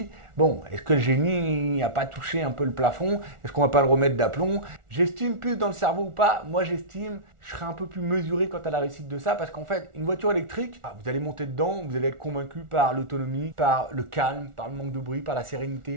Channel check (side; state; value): left; late; 1.4 ms